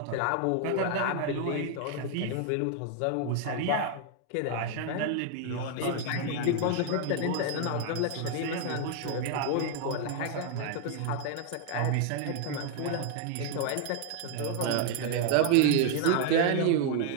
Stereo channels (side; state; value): both; different; correlation 0.00